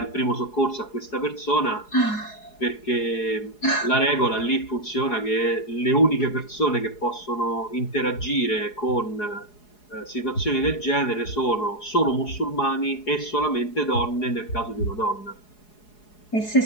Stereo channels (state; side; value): late; right; 4.8 ms